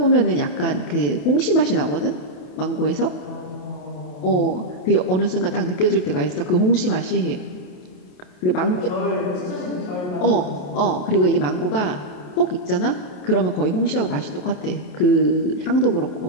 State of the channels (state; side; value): late; right; 28 ms